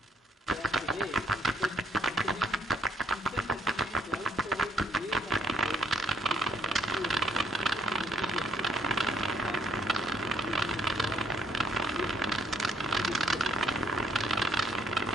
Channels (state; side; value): normal; both; correlation 0.69